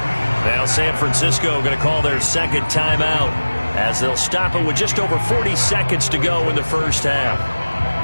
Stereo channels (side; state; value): both; inverted; correlation -1.00